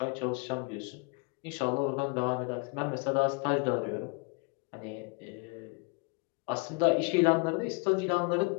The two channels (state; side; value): quieter; right; 31.0 dB